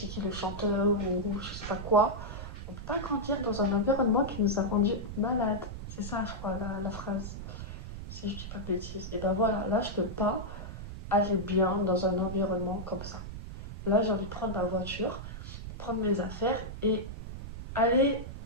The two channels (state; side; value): noise; right; rumble, 9 dB below the sound